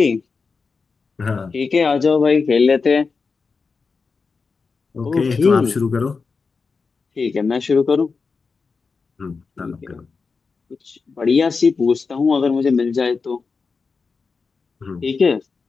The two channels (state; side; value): quieter; right; 4.7 dB